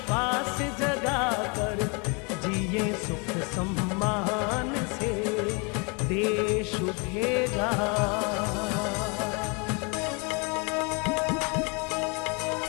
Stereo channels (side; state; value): right; quieter; 32.1 dB